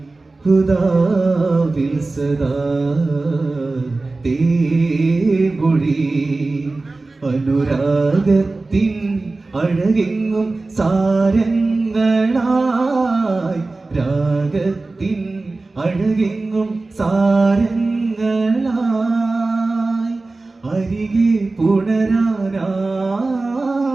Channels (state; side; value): quieter; left; 3.3 dB